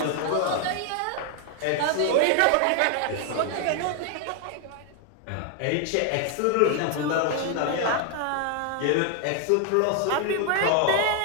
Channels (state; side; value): different; both; correlation 0.01